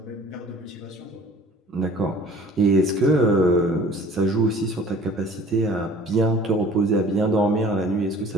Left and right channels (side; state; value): both; normal; correlation 0.49